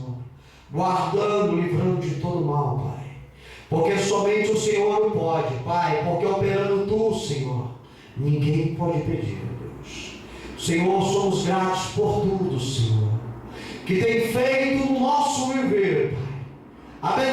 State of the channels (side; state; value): both; identical; correlation 1.00